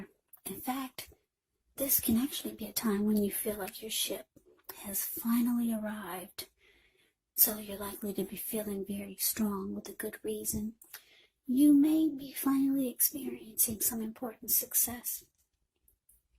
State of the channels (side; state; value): both; identical; correlation 1.00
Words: In fact, this can actually be a time when you feel like your ship has finally arrived. So you're likely to be feeling very strong with a good reason. You may be finally experiencing some important success